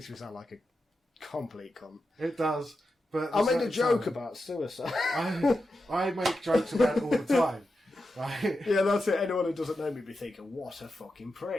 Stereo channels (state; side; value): normal; both; correlation 0.89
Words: me sound like a complete cunt. It does. But I made a joke about suicide. I make jokes about it all the time. Right? Yeah, that's it. Anyone who doesn't know me be thinking, "What a fucking